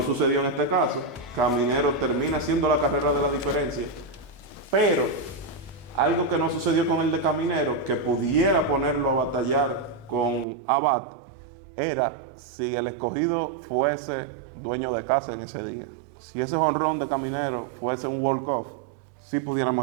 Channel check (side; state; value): left; drops out; at 10.5 s